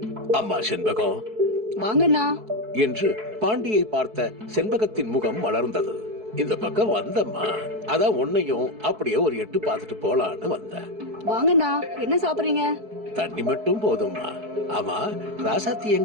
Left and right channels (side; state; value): left; late; 4.6 ms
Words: அம்மா செண்பகம், வாங்கண்ணா என்று பாண்டியை பார்த்த செண்பகத்தின் முகம் மலர்ந்தது. இந்த பக்கம் வந்தம்மா, அதான் உன்னையும் அப்படியே ஒரு எட்டு பார்த்துட்டு போலான்னு வந்தேன். வாங்கண்ணா, என்ன சாப்பிடுறீங்க? தண்ணி மட்டும் போதும்மா. ஆமா, ராசாத்தி